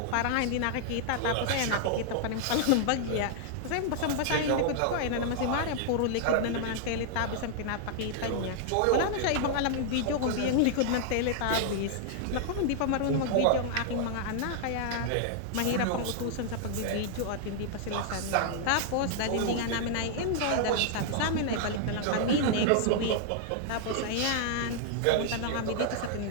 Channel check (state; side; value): different; both; correlation -0.01